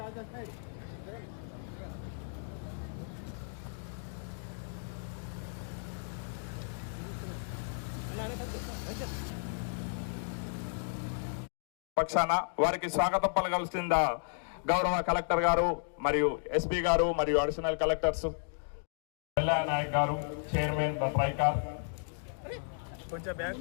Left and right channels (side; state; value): right; silent; digital silence